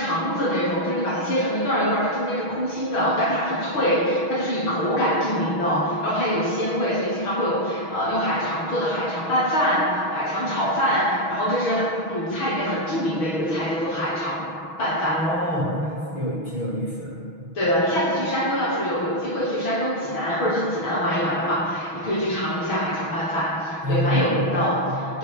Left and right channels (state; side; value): late; right; 6.2 ms